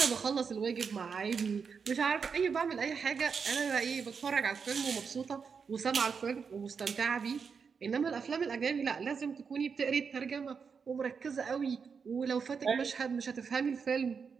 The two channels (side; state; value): left; quieter; 5.9 dB